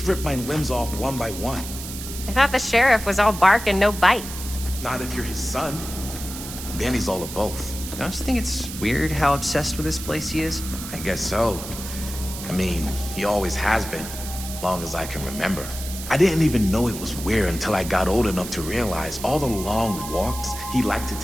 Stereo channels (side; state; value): right; noise; hiss, 10 dB below the sound